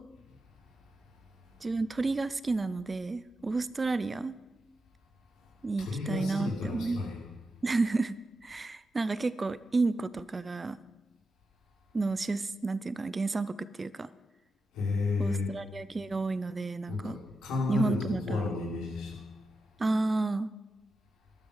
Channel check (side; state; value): both; normal; correlation 0.89